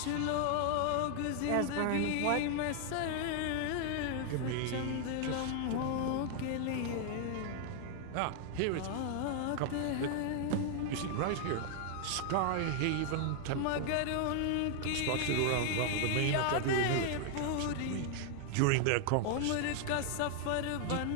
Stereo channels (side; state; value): both; different; correlation 0.00